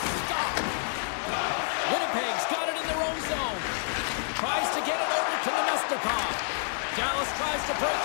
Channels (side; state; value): right; silent; digital silence